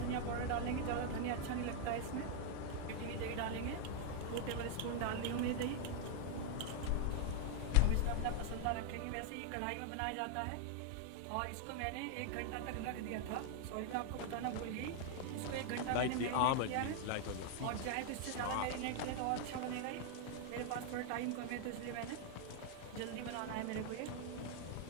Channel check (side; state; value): both; different; correlation 0.00